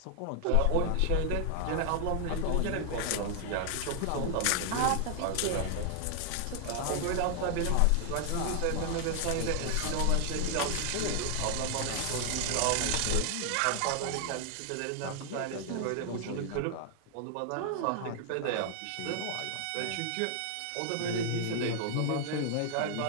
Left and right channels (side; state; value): both; different; correlation 0.00